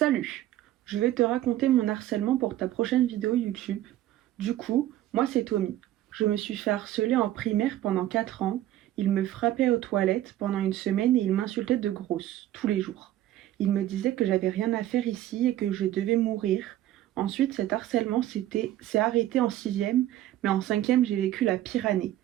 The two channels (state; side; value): quieter; left; 13.5 dB